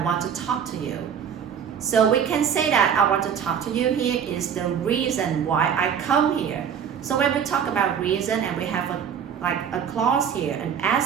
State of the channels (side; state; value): left; quieter; 7.8 dB